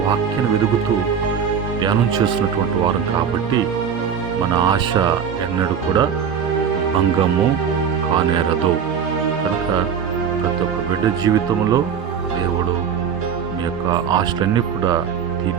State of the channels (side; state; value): left; quieter; 7.4 dB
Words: వాక్యాన్ని వెతుకుతూ ధ్యానం చేస్తున్నటువంటి వారం కాబట్టి మన ఆశ ఎన్నడూ కూడా భంగము కానేరదు. కనుక ప్రతి ఒక్క బిడ్డ జీవితంలో దేవుడు మీ యొక్క ఆశలన్నీ కూడా